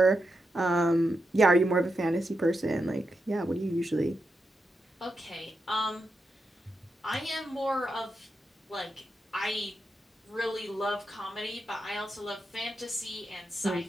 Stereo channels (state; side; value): normal; both; correlation 0.86